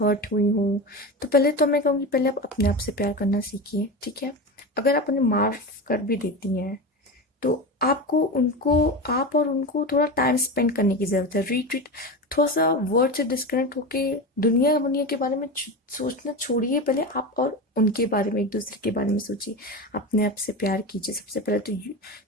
हुई हो। तो पहले तो मैं कहूँगी पहले आप अपने आप से प्यार करना सीखिए, ठीक है। अगर आप उन्हें माफ़ कर भी देती हैं तो आपको उनको, आप और उनको थोड़ा टाइम स्पेंड करने की ज़रूरत है। रिट्रीट, थोड़ा सा वर्ड से डिस्कनेक्ट होके दुनिया दुनिया के बारे में सोचना छोड़िए। पहले आप और उनके बारे में, एक दूसरे के बारे में सोचिए। अपने आप से प्यार कीजिए सबसे पहले तो।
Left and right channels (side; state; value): both; normal; correlation 0.23